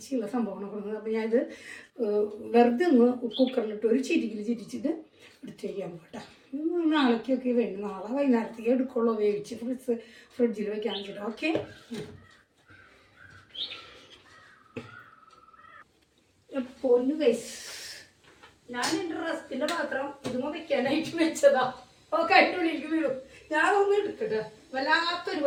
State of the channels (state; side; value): identical; both; correlation 1.00